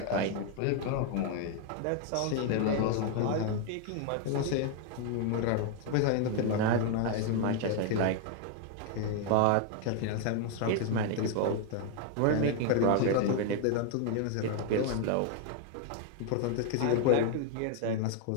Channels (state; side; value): different; both; correlation 0.00